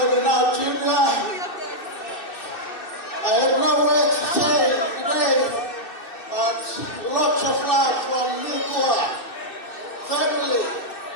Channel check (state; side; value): late; right; 2.6 ms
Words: now junior I have no words to say today, but lots of love from Nikua family.